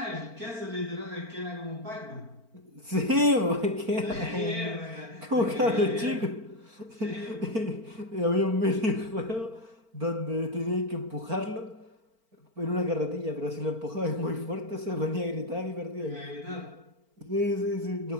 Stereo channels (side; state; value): left; late; 4.4 ms